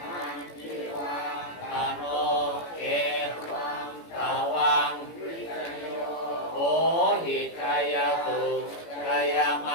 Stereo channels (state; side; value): late; right; 18 ms